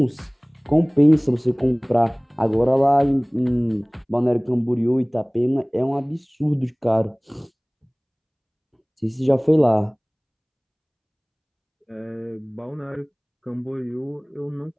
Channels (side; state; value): both; identical; correlation 1.00